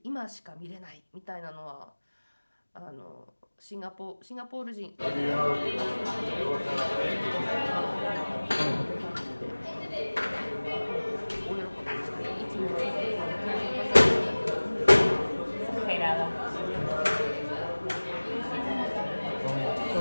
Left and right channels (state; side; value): inverted; both; correlation -1.00